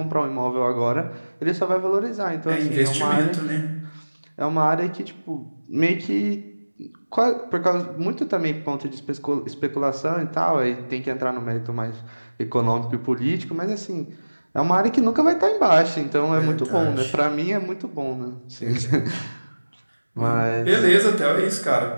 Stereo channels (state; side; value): inverted; both; correlation -1.00